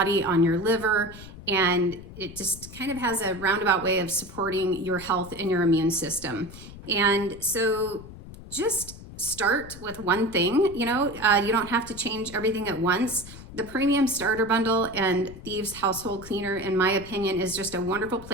on your liver, and it just kind of has a roundabout way of supporting your health and your immune system. And so just start with one thing. You don't have to change everything at once. The Premium Starter Bundle and Thieves Household Cleaner, in my opinion, is just a wonderful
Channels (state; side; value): noise; left; rumble, 15 dB below the sound